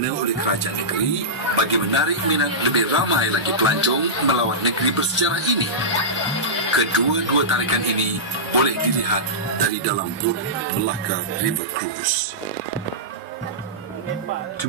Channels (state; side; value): normal; both; correlation -0.15